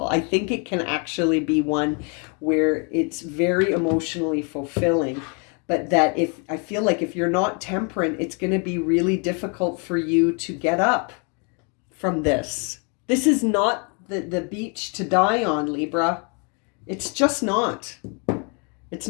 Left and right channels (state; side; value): quieter; right; 36.0 dB